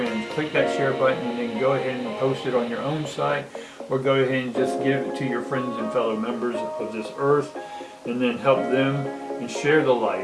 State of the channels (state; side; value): identical; both; correlation 1.00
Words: Click that share button and then go ahead and post it on your own site, or go ahead and just give it to your friends and fellow members of this earth, and then help them and share the